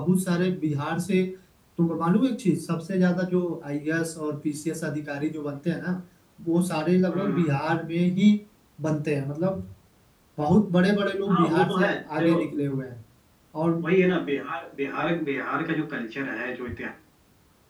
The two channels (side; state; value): both; identical; correlation 1.00